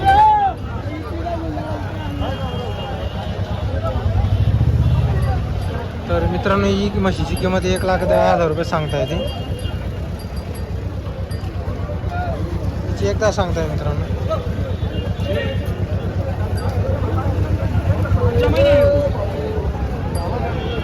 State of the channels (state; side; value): identical; both; correlation 1.00